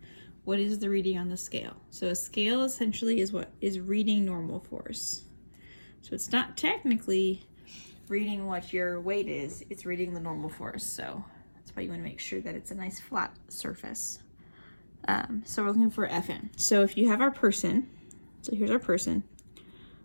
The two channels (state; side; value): inverted; both; correlation -1.00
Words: What is the reading on the scale? So a scale essentially is what is reading normal force. So it's not technically reading what your weight is, it's reading the normal force. So that's why you want to make sure that it's a nice flat surface. So we're looking for Fn. So if you have our person, so here's our person,